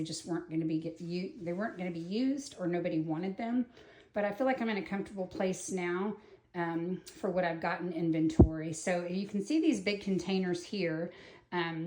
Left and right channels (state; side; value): identical; both; correlation 1.00